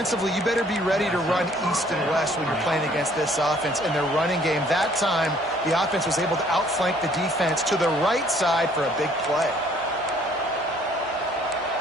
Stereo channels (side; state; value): both; normal; correlation 0.60